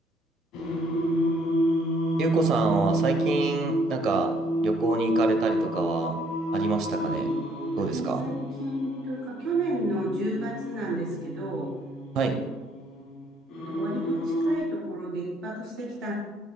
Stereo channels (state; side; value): normal; both; correlation 0.66